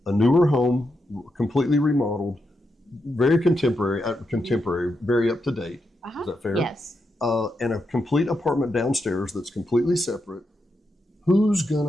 a newer home, completely remodeled, very contemporary, very up to date. Is that fair? Yes. And a complete apartment downstairs that's completely separate. Who's going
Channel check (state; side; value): normal; both; correlation 0.84